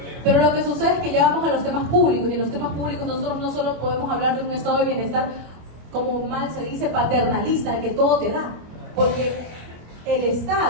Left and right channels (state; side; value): late; left; 25 ms